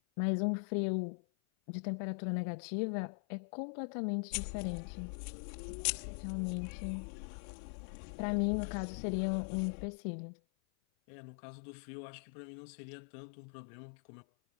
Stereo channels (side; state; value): right; silent; 50 dB below the other